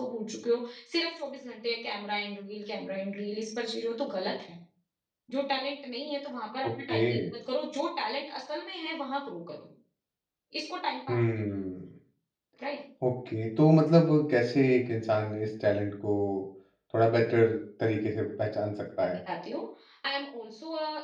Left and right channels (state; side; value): identical; both; correlation 1.00